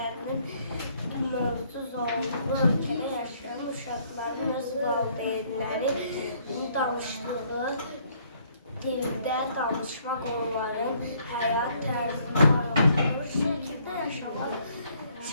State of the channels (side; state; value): both; inverted; correlation -0.65